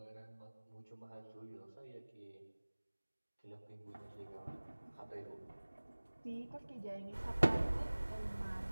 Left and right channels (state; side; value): inverted; both; correlation -1.00